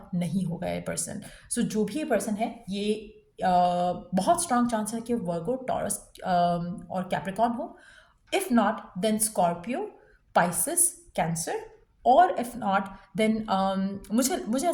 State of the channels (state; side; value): identical; both; correlation 1.00